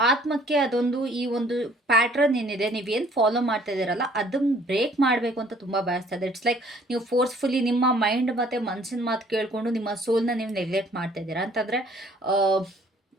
ಆತ್ಮಕ್ಕೆ ಅದೊಂದು ಈ ಒಂದು ಪ್ಯಾಟ್ರನ್ ಏನಿದೆ, ನೀವೇನು ಫಾಲೋ ಮಾಡ್ತಾ ಇದ್ದೀರಲ್ಲ ಅದನ್ನು ಬ್ರೇಕ್ ಮಾಡಬೇಕು ಅಂತ ತುಂಬ ಬಯಸ್ತಾ ಇದೆ. ಇಟ್ಸ್ ಲೈಕ್ ನೀವು ಫೋರ್ಸ್ಫುಲಿ ನಿಮ್ಮ ಮೈಂಡ್ ಮತ್ತು ಮನಸ್ಸಿನ ಮಾತು ಕೇಳಿಕೊಂಡು ನಿಮ್ಮ ಸೋಲ್ನ ನೀವು ನೆಗ್ಲೆಕ್ಟ್ ಮಾಡ್ತಾ ಇದ್ದೀರಾ ಅಂತಂದರೆ,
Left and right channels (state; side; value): normal; both; correlation 0.58